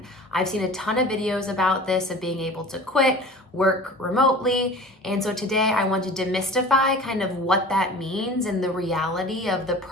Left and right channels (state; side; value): normal; both; correlation 0.40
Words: I've seen a ton of videos about this, of being able to quit, work remotely. And so today I want to demystify kind of what that means and the reality of the